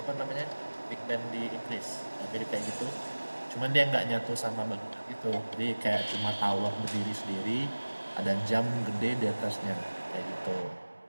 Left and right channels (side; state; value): both; inverted; correlation -1.00